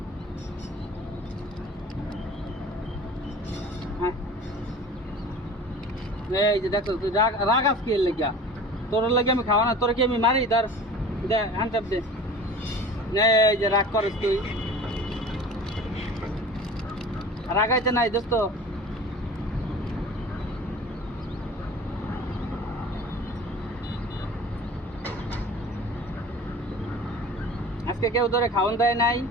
হ্যাঁ, এই যে দেখো তুই রাগাস কি লেগা? তোর লাগে আমি খাওয়া না, তোর কি আমি মারি? ধর দে, হ্যান্ড চাপ দে। এই যে রাগ করস তুই, রাগাইতে নাই দোস্ত। আজকে কেউ ধরে খাওয়ান দেয় নাই।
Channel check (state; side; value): normal; both; correlation 0.41